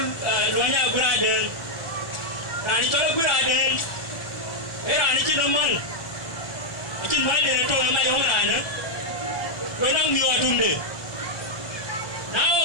loa nhà quý ra đơn là đi chọn quý ra đơn thế là đi chứ đâu man chứ nói để tôi làm ai không làm nữa tôi đang nhiều đùm đi nào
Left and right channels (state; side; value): late; right; 1.4 ms